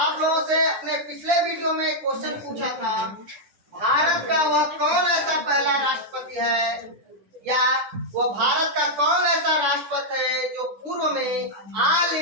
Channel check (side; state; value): left; late; 10 ms